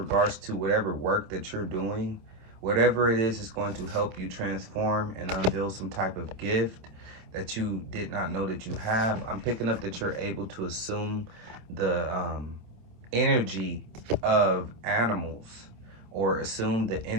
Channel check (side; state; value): left; late; 26 ms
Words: to whatever work that you're doing. Whatever it is going to help you transform and unveil some type of gift that you did not know that you have. I'm picking up that you're able to assume the energy of animals, or assume the